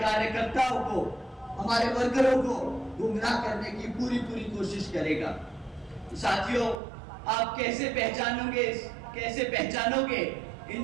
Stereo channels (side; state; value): left; drops out; at 6.8 s